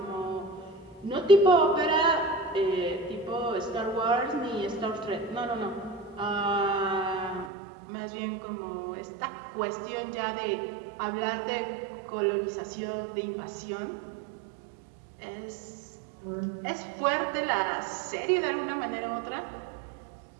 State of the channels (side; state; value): left; drops out; at 7.5 s